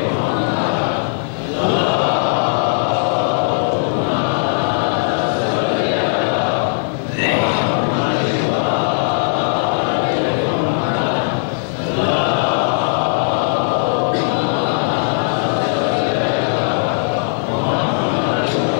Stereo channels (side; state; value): right; silent; digital silence